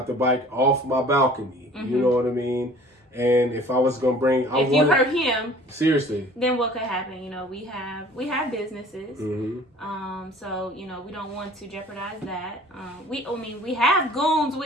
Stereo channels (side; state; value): both; normal; correlation 0.49